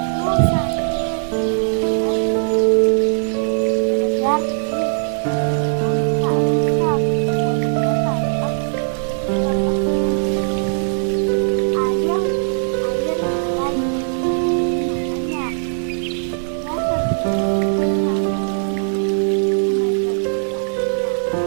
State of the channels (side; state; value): left; silent; digital silence